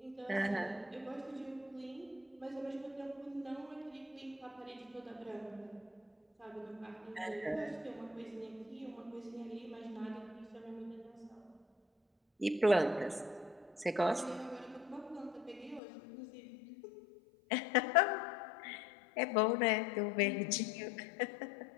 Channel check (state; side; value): drops out; right; at 15.8 s